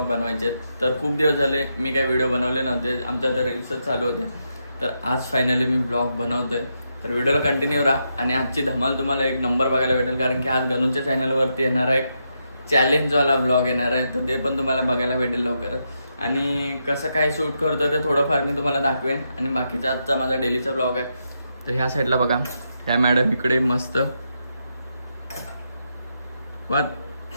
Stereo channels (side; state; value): both; inverted; correlation -0.82